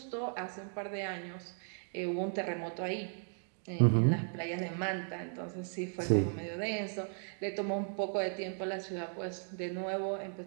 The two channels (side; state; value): left; silent; 54 dB below the other